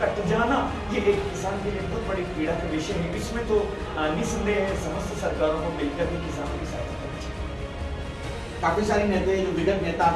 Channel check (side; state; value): both; identical; correlation 1.00